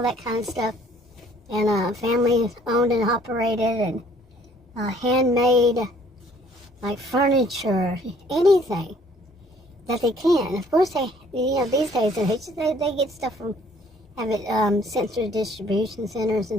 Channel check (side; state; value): both; normal; correlation 0.59